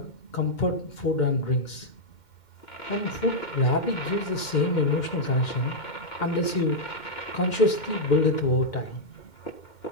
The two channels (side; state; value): right; late; 2.1 ms